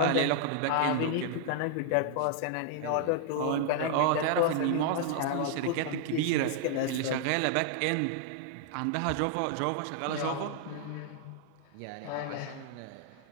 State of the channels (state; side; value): different; both; correlation 0.00